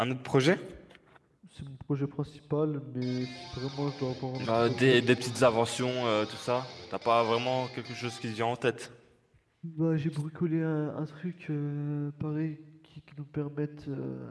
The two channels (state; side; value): identical; both; correlation 1.00